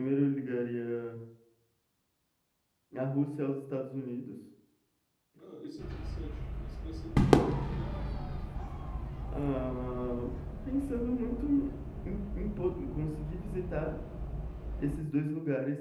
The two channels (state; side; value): identical; both; correlation 1.00